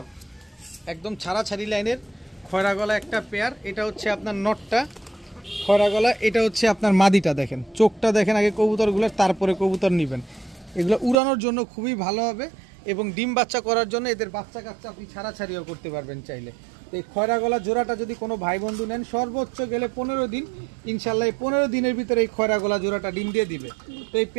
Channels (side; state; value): left; drops out; at 11.2 s